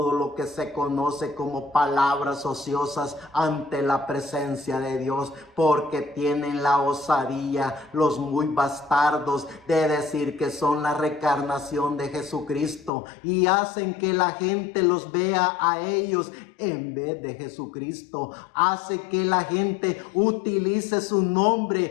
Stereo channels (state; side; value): drops out; right; at 12.9 s